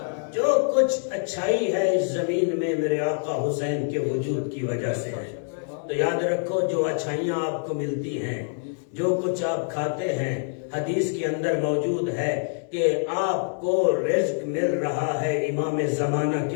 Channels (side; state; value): right; silent; digital silence